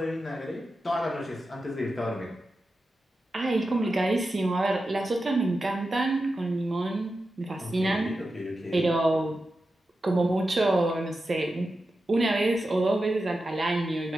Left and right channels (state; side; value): normal; both; correlation 0.91